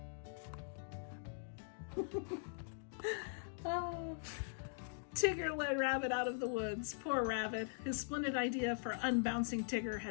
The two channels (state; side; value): silent; right; digital silence